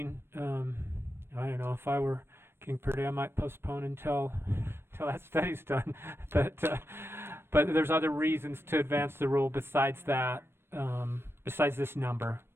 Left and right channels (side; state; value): left; late; 0.12 ms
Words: I don't know, if I were King Purdy, I might postpone until that study's done. But there's other reasons to advance the rule besides that, besides this number,